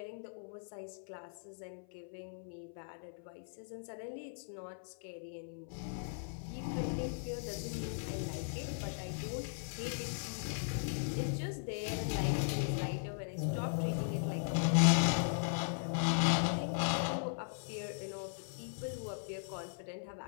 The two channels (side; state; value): right; silent; 52 dB below the other